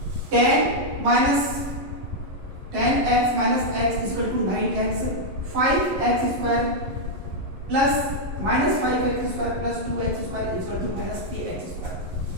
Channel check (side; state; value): left; late; 11 ms